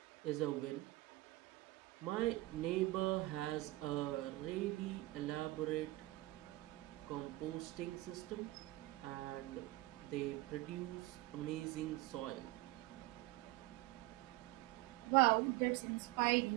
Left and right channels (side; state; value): left; quieter; 19.4 dB